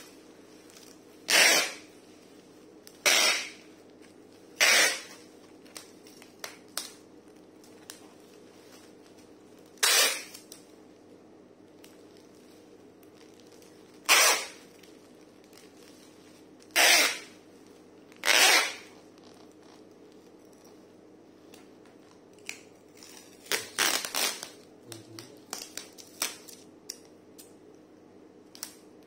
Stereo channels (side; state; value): both; identical; correlation 1.00